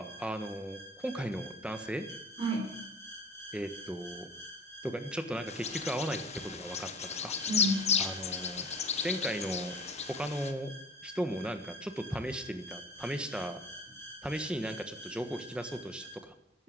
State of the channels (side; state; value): both; normal; correlation 0.43